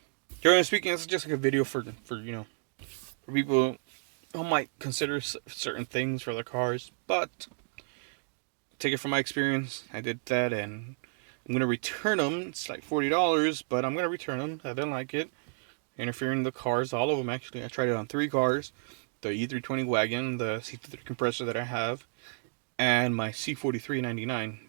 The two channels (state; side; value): silent; left; digital silence